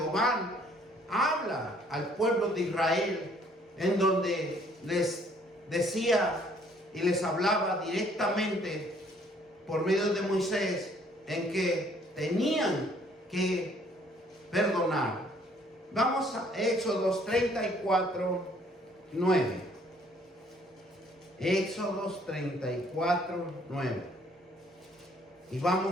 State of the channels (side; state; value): both; normal; correlation 0.62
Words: habla al pueblo de Israel, en donde les decía y les hablaba directamente por medio de Moisés, en que tenían que perdonar. Vamos a Éxodo 34, 9. Éxodo 34, 9. Y